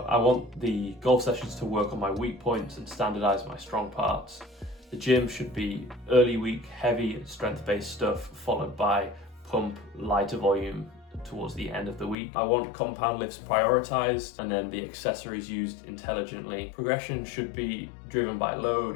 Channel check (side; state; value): right; drops out; at 12.2 s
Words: I want the golf sessions to work on my weak points and standardize my strong parts. The gym should be early week, heavy and strength-based stuff, followed by pump, lighter volume towards the end of the week. I want compound lifts prioritized and then the accessories used intelligently. Progression should be driven by